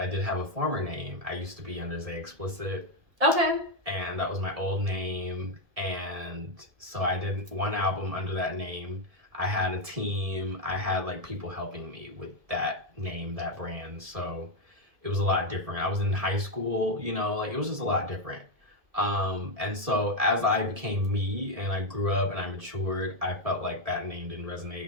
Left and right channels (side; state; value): left; late; 1.7 ms